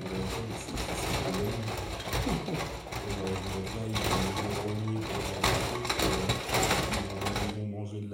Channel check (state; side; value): identical; both; correlation 1.00